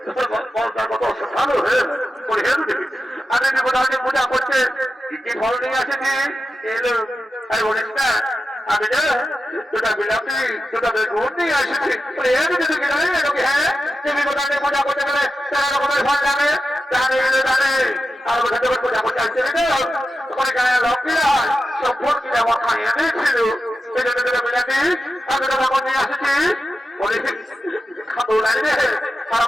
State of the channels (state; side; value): normal; both; correlation 0.91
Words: ভালো আমি পূজা করতে কি ফল নিয়ে আসেছি এলো আর বলিস না আমি দুটা বিলাপি দুটা বেগুন নিয়ে এসেছি হ্যাঁ তুমি কোথায় পূজা করতে গেলে তারা রকমের ফল জানে জানে জানে আর পূজা করতে আসছে তোমার গায়ে লক্ষ্মীরা সব ফোন কিনে আমার খাইয়ে দিয়েছিল এই জন্য দুটা বিলাপি আমি দুটা বেগুন নিয়ে আসেছি বলে খাবো লাগবে আর